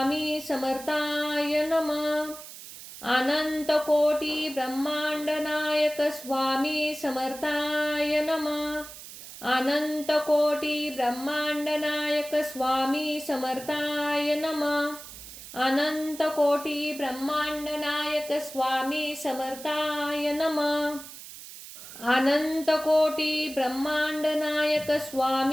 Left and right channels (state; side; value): noise; right; hiss, 14 dB below the sound